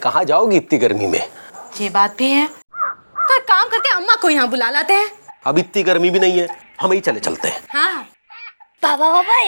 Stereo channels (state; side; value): inverted; both; correlation -1.00